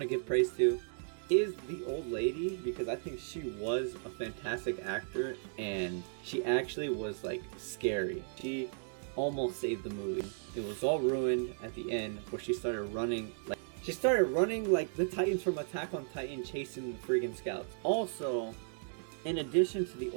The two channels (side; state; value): left; silent; digital silence